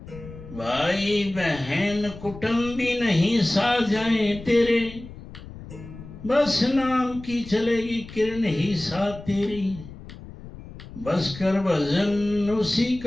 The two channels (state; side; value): noise; left; rumble, 15 dB below the sound